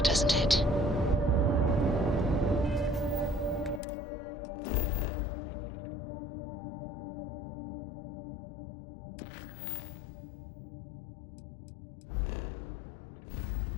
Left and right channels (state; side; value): drops out; right; at 3.8 s